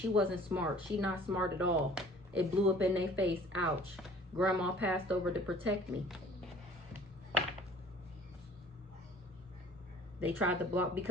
wasn't smart. She not smart at all. It blew up in their face. Ouch. Grandma passed over to protect me. They tried to block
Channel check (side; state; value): both; normal; correlation 0.50